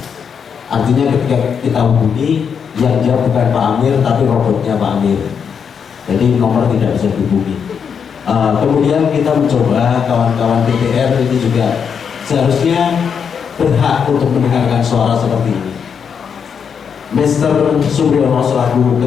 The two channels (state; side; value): quieter; right; 6.9 dB